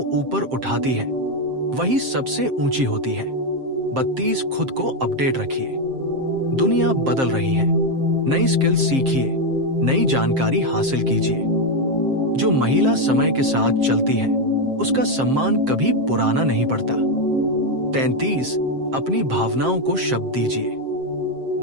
ऊपर उठाती है, वही सबसे ऊंची होती है। 32 खुद को अपडेट रखिए। दुनिया बदल रही है। नई स्किल सीखिए, नई जानकारी हासिल कीजिए। जो महिला समय के साथ चलती है, उसका सम्मान कभी पुराना नहीं पड़ता। 33 अपनी भावनाओं को शब्द दीजिए।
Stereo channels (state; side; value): late; left; 7.6 ms